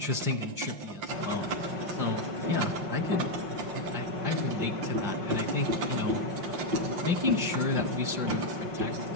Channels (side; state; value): left; late; 5.7 ms